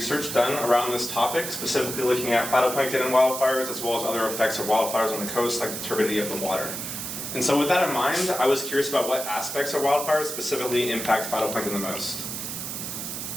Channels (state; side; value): noise; right; hiss, 6 dB below the sound